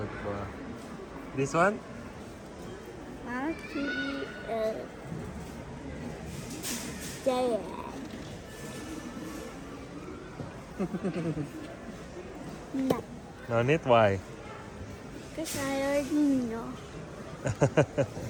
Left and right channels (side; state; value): both; identical; correlation 1.00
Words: This one? want to eat giant. No, No need, why? because I already know.